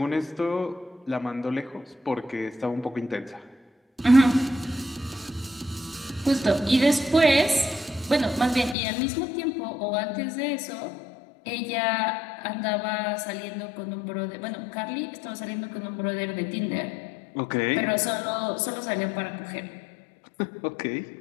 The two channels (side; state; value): right; drops out; at 8.8 s